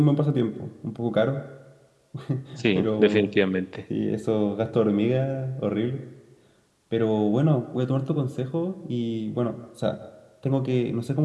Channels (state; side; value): identical; both; correlation 1.00